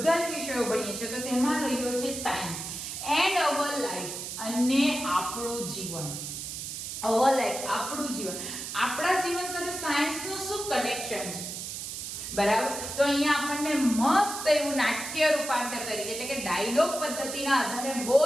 જ વિષયો ભણીએ છીએ. તો તેમાં રહ્યો છે સાયન્સ એન્ડ અવર લાઈફ અને આપણું જીવન. અવર લાઈફ આપણું જીવન. આપણા જીવન સાથે સાયન્સનું શું કનેક્શન છે? બરાબર? તો અહીંયા આપણને મસ્ત એવું નાટ્ય રૂપાંતર તરીકે એટલે કે ડાયલોગ પદ્ધતિના આધારે બહુ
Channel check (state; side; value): noise; right; hiss, 7 dB below the sound